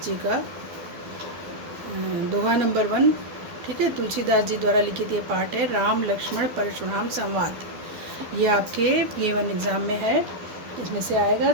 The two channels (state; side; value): late; left; 12 ms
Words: जी का दोहा नंबर 1, ठीक है, तुलसीदास जी द्वारा लिखित ये पाठ है, राम लक्ष्मण परशुराम संवाद। ये आपके P1 एग्ज़ाम में है, इसमें से आएगा।